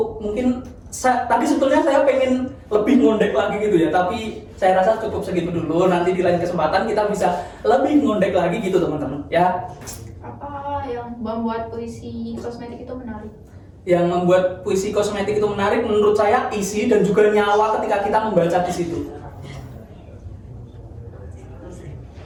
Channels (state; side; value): identical; both; correlation 1.00